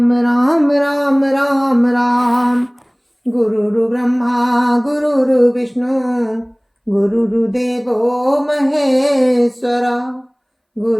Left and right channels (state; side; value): identical; both; correlation 1.00